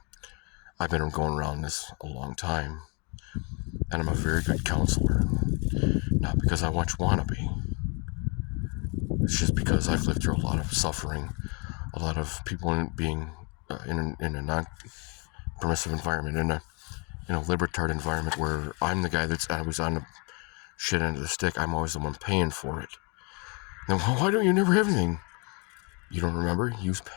I've been going around this a long time, and I'm a very good counselor. Not because I want to be. It's just because I've lived through a lot of suffering, a lot of people being in a non-permissive environment, in a libertard environment where I'm the guy I was on the shit end of the stick. I'm always the one paying for it. Then why don't you never have anything? You don't remember? You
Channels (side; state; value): right; quieter; 33.0 dB